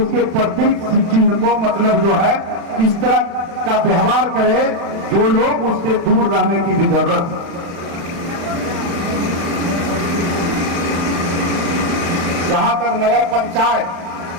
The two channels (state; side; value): late; left; 35 ms